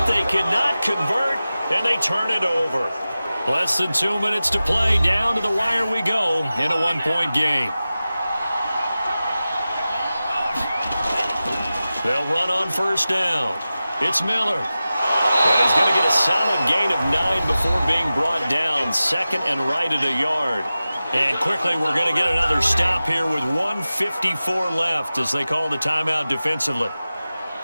They cannot convert, and they turn it over. Less than 2 minutes to play. Down to the wire we go in a 1-point game. They'll run on 1st down. It's Miller. And he's going to get a solid gain of 9 before being brought down. 2nd and right at a yard. And quickly, we're going to get another stop here with 1:54 left as they call the timeout defensively.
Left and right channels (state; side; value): inverted; both; correlation -0.95